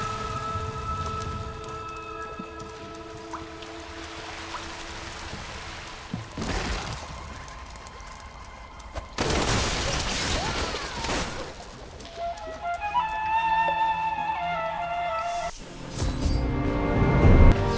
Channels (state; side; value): identical; both; correlation 1.00